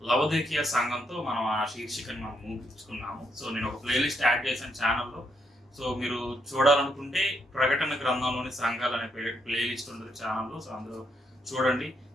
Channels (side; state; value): both; normal; correlation 0.77